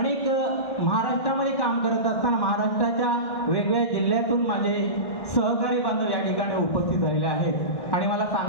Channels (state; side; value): late; right; 1.6 ms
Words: महाराष्ट्रामध्ये काम करत असताना महाराष्ट्राच्या वेगवेगळ्या जिल्ह्यातून माझे सहकारी बांधव या ठिकाणी उपस्थित झालेले आहेत. आणि मला